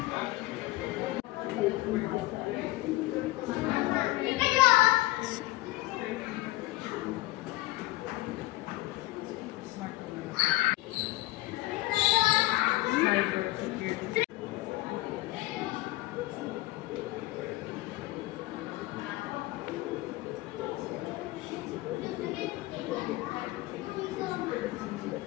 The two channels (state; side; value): quieter; right; 18.7 dB